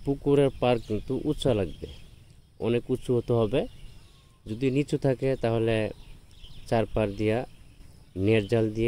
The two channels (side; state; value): both; identical; correlation 1.00